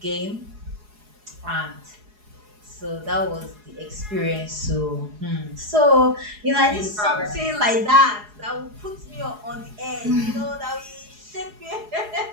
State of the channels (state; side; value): late; left; 4.8 ms